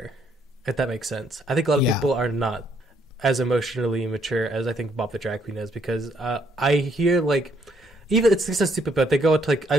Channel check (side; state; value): both; normal; correlation 0.70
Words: if that makes sense. I think a lot of people are not as emotionally mature as I think Bob the drag queen is, because I hear like, even it's so stupid, but they go to like I